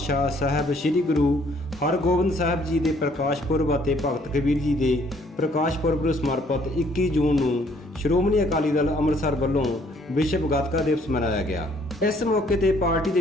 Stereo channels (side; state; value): both; normal; correlation 0.63